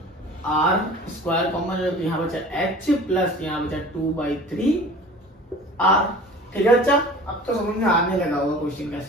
आर स्क्वायर कॉमन है तो यहाँ बचा एच प्लस यहाँ बचा 2/3 आर। ठीक है बच्चा, अब तो समझ में आने लगा होगा क्वेश्चन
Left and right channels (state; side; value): normal; both; correlation 0.42